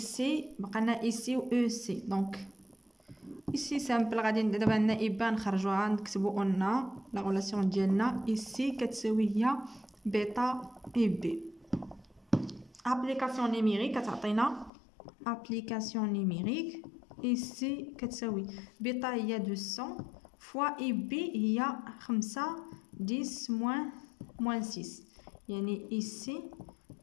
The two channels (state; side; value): drops out; right; at 14.7 s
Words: بقى لنا اي سي و او سي. دونك ici سامبل غادي دابا عندنا إبا نخرجوها نكتبو قلنا لا غولاسيون ديالنا ici كتساوي هي بيتا إي بي. ابليكاسيون نيميريك كتعطينا ابليكاسيون نيميريك ici كتساوي بيتا هي 200 فوا إي بي هي 5 10 موان 6 يعني ici